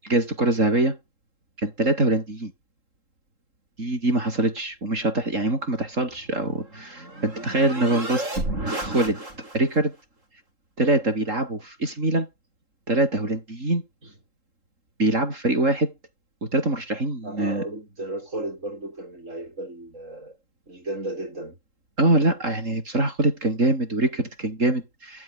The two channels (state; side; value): late; left; 3.7 ms